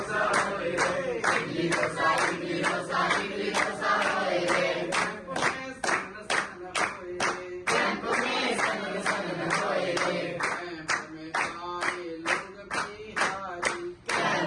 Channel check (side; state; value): both; identical; correlation 1.00